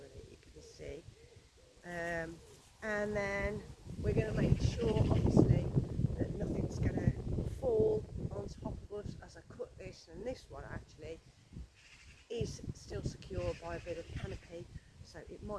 you can see, and then we're going to make sure obviously that nothing's going to fall on top of us as I cut this, and this one actually is still secure by a bit of canopy, so it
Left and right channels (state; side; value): identical; both; correlation 1.00